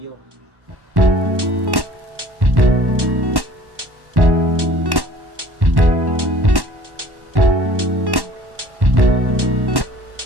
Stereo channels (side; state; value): left; late; 1.1 ms